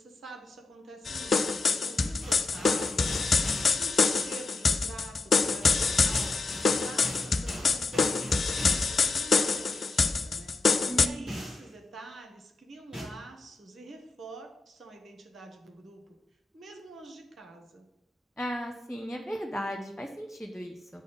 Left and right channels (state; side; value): quieter; right; 3.7 dB